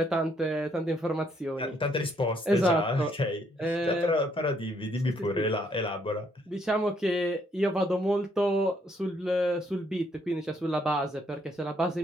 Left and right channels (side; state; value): both; normal; correlation 0.70